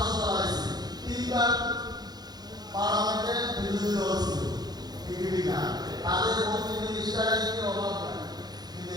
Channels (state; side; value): late; left; 0.19 ms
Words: চালাইছে, 3বার পার্লামেন্টে বিরোধী দল ছিল, বিজেপি না। তাদের মন্ত্রী মিনিস্টারের কি অভাব নাই, কিন্তু